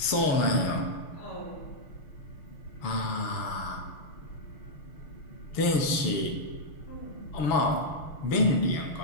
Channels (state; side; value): late; right; 6.5 ms